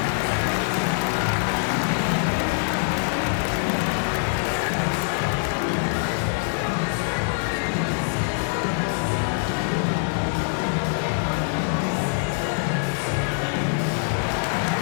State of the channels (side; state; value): right; silent; digital silence